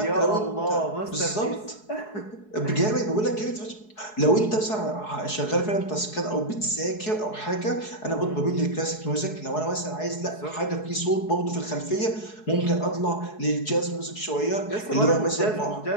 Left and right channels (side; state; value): right; late; 4.7 ms